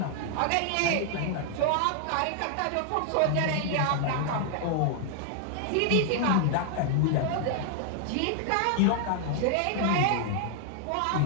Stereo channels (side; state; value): both; different; correlation 0.00